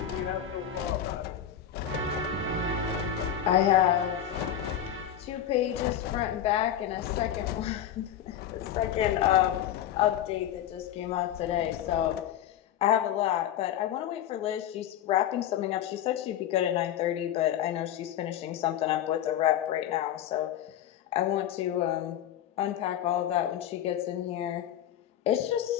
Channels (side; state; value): right; quieter; 10.4 dB